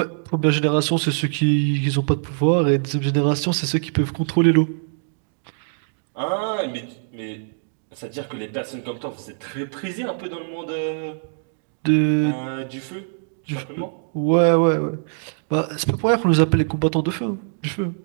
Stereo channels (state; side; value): silent; left; digital silence